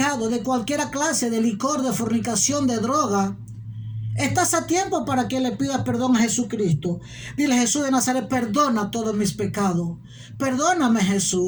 de cualquier clase, de licor, de fornicación, de droga, estás a tiempo para que le pidas perdón a Jesucristo. Dile: Jesús de Nazaret, perdona todos mis pecados. Perdóname,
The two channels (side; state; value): both; identical; correlation 1.00